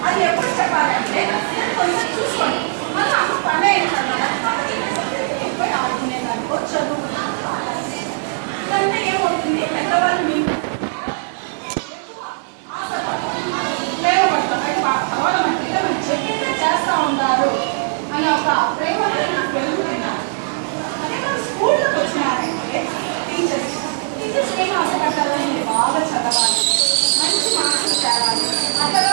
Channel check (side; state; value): left; silent; 66 dB below the other